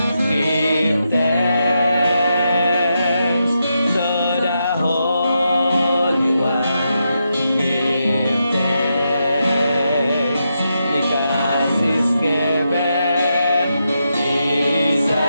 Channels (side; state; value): both; inverted; correlation -0.85